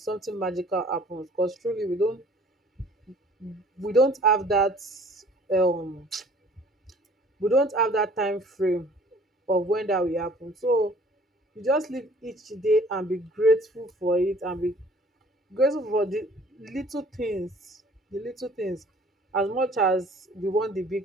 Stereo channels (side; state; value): both; normal; correlation 0.53